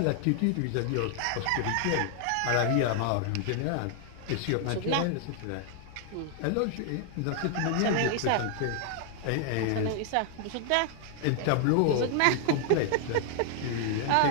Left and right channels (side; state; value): both; different; correlation 0.00